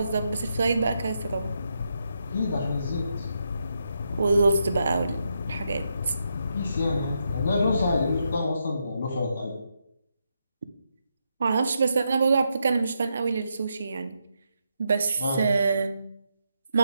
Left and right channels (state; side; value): inverted; both; correlation -0.82